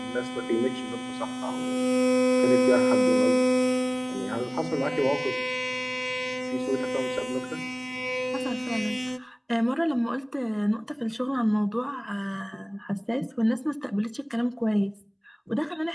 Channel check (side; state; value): both; identical; correlation 1.00